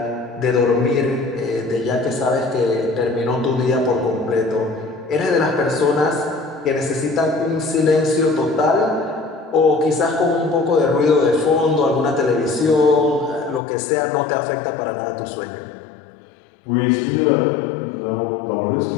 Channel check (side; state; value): right; drops out; at 13.6 s